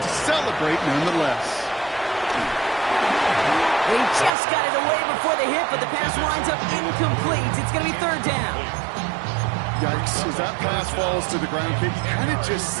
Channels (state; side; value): drops out; left; at 4.3 s